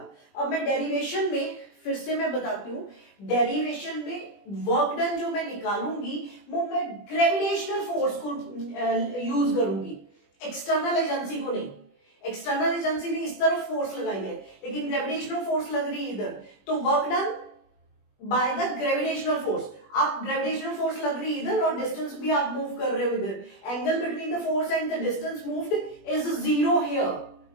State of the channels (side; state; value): right; late; 20 ms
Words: अब मैं डेरिवेशन में फिर से मैं बताती हूँ, डेरिवेशन में वर्क डन जो मैं निकालूंगी वो मैं ग्रेविटेशनल फोर्स को यूज करूंगी, एक्सटर्नल एजेंसी को नहीं। एक्सटर्नल एजेंसी ने इस तरफ फोर्स लगाई है, लेकिन ग्रेविटेशनल फोर्स लग रही है इधर, तो work done by the gravitational force. आप ग्रेविटेशनल फोर्स लग रही है इधर और डिस्टेंस भी आप मूव कर रहे हो इधर, angle between the force and the distance moved is zero here.